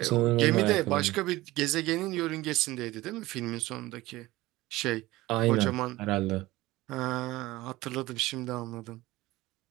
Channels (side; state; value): left; quieter; 18.6 dB